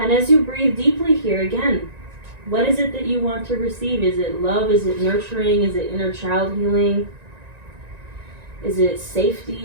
as you breathe deeply here, again, what is it that you want to receive? Is it love? Is it nurturing? Is it inner child healing? Is it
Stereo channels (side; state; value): left; late; 1.9 ms